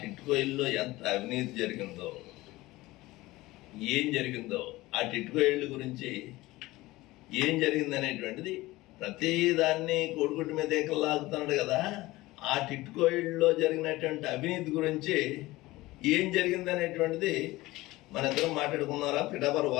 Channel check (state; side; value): quieter; right; 19.1 dB